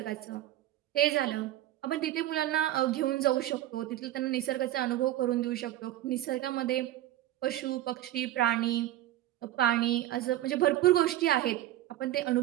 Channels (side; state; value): left; quieter; 13.9 dB